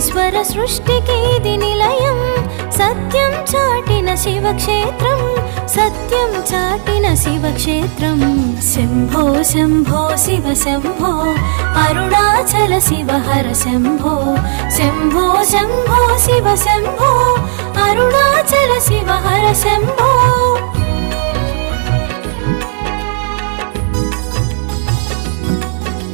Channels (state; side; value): silent; left; 60 dB below the other